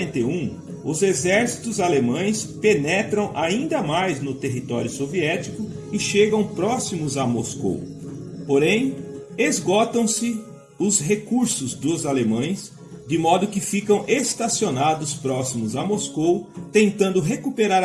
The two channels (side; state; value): both; identical; correlation 1.00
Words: os exércitos alemães penetram ainda mais no território soviético e chegam próximos a Moscou. Porém, esgotam-se os recursos dos alemães, de modo que ficam estacionados próximos a Moscou, tentando recuperar